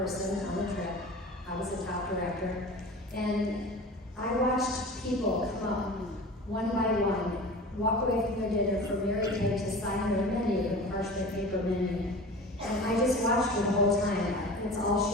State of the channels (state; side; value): normal; both; correlation 0.37